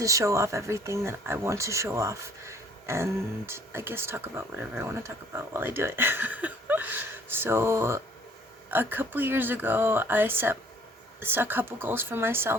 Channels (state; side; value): normal; both; correlation 0.57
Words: show off everything that I want to show off. And I guess talk about whatever I want to talk about while I do it. So, a couple years ago, I set a couple goals for